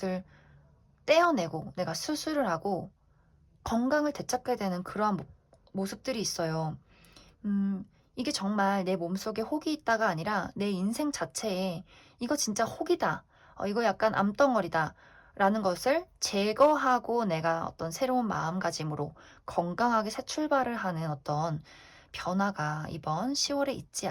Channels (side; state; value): both; identical; correlation 1.00